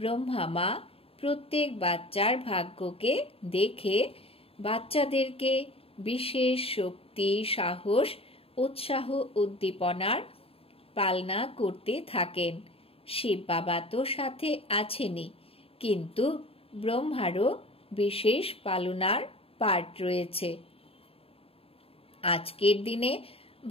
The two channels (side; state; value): right; late; 0.27 ms